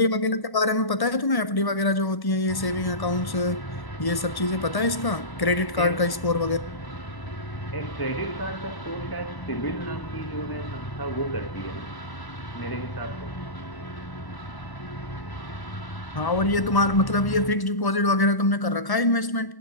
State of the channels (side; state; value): right; late; 1.1 ms